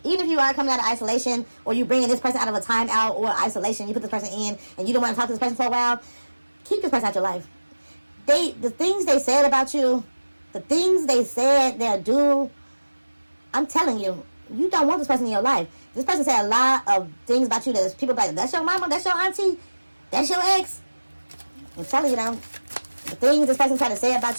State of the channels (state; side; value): inverted; both; correlation -1.00